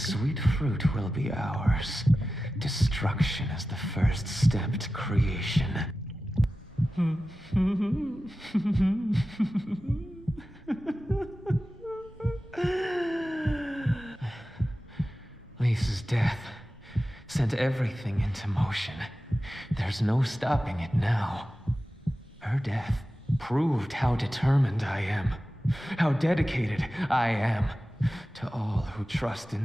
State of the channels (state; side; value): normal; both; correlation 0.94